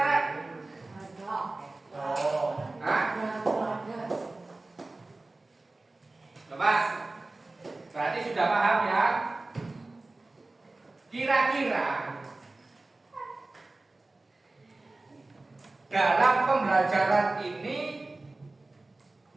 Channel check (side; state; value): left; quieter; 3.1 dB